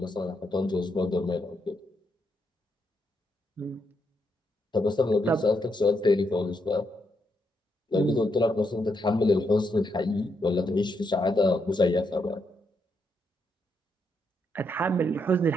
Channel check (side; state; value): both; normal; correlation 0.79